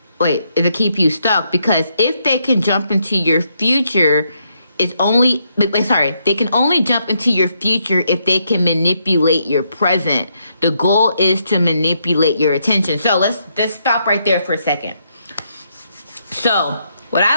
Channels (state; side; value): inverted; both; correlation -0.77